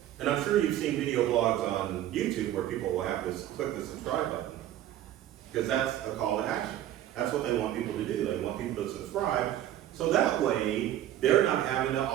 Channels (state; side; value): quieter; left; 12.4 dB